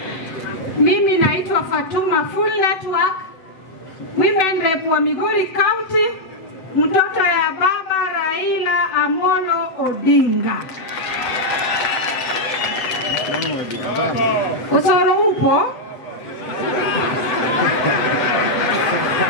Mimi naitwa Fatuma Full Network, Women Rep wa Migori County, mtoto ya baba Raila Amolo Odinga. Osoro upo?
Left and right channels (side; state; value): right; late; 8.0 ms